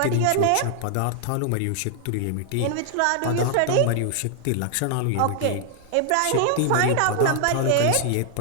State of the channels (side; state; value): both; different; correlation 0.00